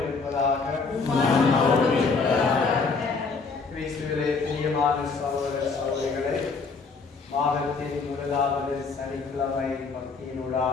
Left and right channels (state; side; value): quieter; right; 4.6 dB